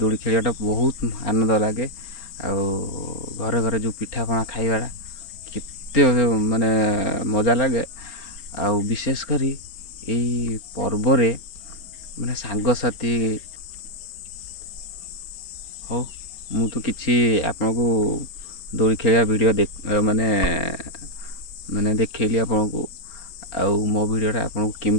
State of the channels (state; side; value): late; right; 4.4 ms